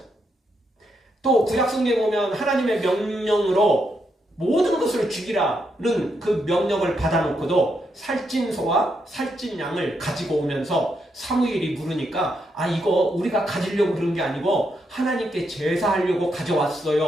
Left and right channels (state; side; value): normal; both; correlation 0.80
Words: 또 구약성경에 보면 하나님의 명령으로 모든 것을 죽이라는 그 명령을 받아놓고도 살찐 소와 살찐 양을 가지고 오면서 사무엘이 물으니까 이거 우리가 가지려고 그런 게 아니고 하나님께 제사하려고